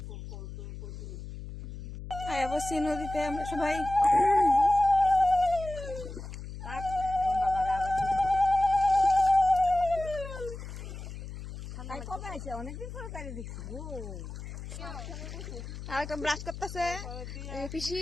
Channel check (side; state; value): left; noise; hum, 10 dB below the sound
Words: বসছি নদীতে আমরা সবাই। অনেকদিন পরে তাই দেখছি আর একটা ব্রাশ করতেছে